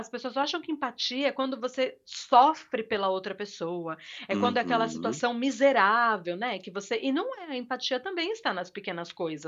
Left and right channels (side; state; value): both; identical; correlation 1.00